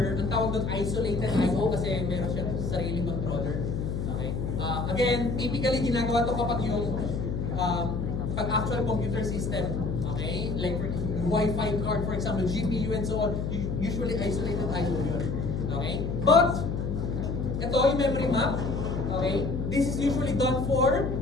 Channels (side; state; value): left; noise; hum, 2 dB below the sound